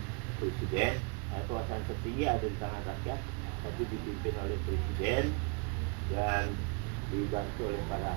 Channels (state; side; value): quieter; left; 33.7 dB